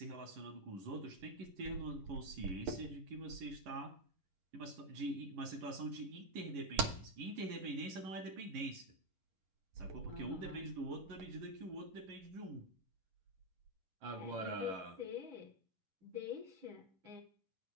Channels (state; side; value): late; left; 11 ms